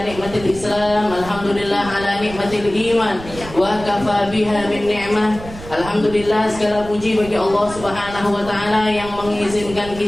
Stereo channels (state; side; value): noise; right; rumble, 14 dB below the sound